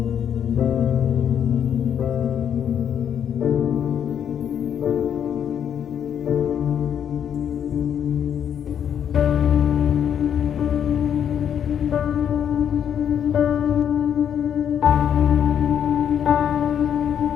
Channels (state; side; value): quieter; right; 8.8 dB